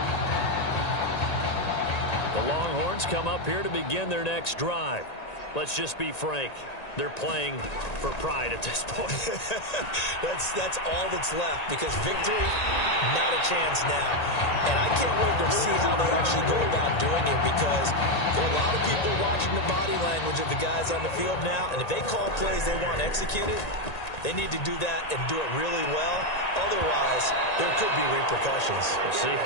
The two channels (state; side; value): late; right; 1.9 ms